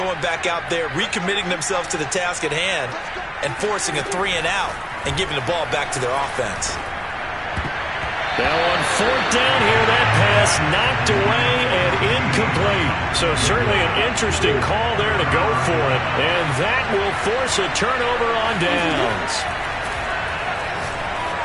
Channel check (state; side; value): identical; both; correlation 1.00